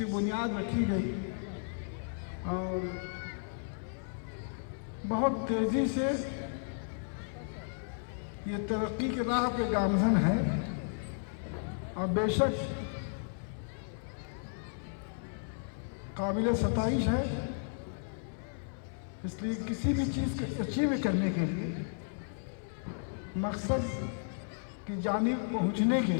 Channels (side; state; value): right; silent; 55 dB below the other